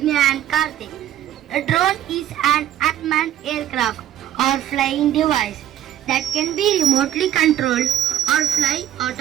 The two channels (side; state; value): left; quieter; 11.4 dB